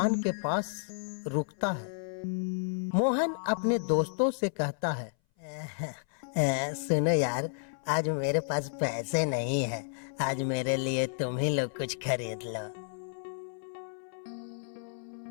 के पास रुकता है। मोहन अपने दोस्तों से कहता है, सुनो यार, आज मेरे पास पैसे नहीं है, आज मेरे लिए तुम ही लोग कुछ खरीद लो।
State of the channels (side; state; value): right; silent; 57 dB below the other